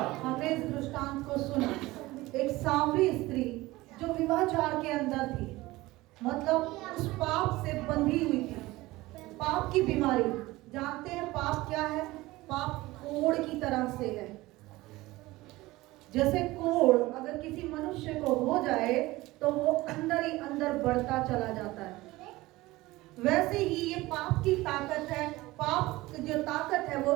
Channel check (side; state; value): left; quieter; 19.3 dB